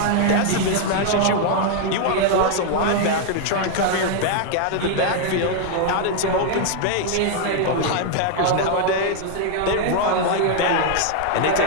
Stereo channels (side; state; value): both; different; correlation 0.00